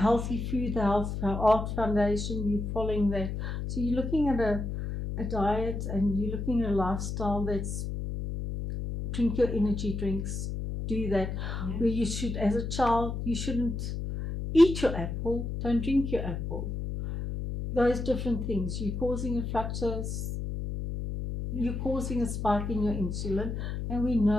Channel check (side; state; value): left; noise; hum, 4 dB below the sound